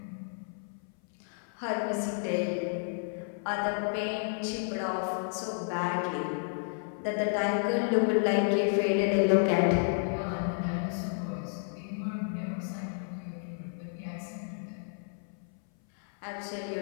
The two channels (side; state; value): right; silent; 57 dB below the other